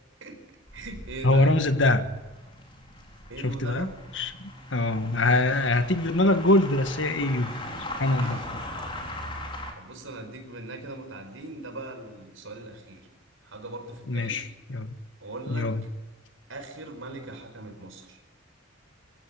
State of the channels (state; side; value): normal; both; correlation 0.38